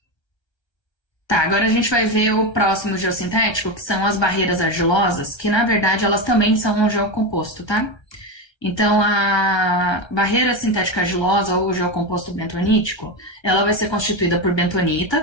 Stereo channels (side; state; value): right; late; 1.3 ms